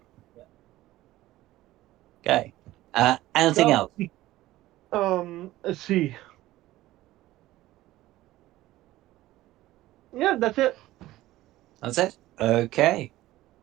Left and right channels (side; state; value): left; quieter; 16.3 dB